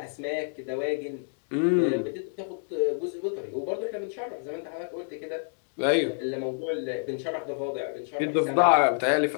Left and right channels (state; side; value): silent; right; digital silence